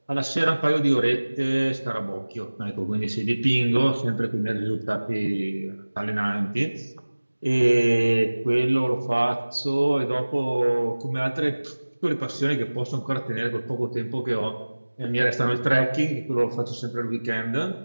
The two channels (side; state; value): both; inverted; correlation -1.00